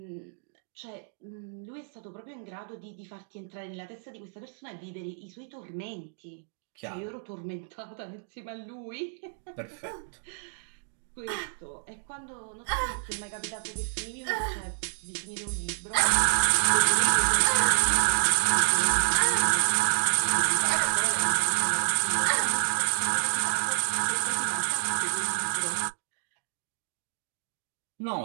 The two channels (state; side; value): silent; left; digital silence